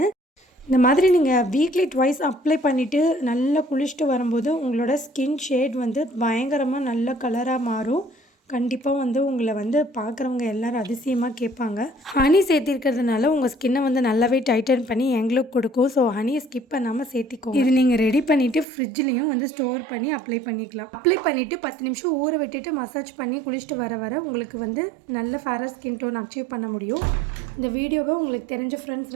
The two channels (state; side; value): drops out; left; at 18.7 s